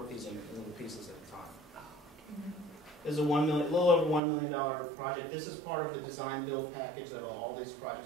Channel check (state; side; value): drops out; left; at 4.2 s